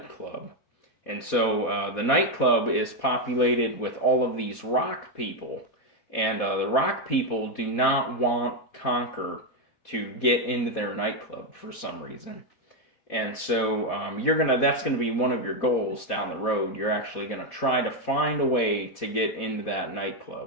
And so the nightclub is populated with all of these rock people, and the rock people do not want Conker to get into their nightclub for some reason. And so that's gonna be one of your goals down the road. You're actually gonna try to find a way to get into that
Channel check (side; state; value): right; late; 4.2 ms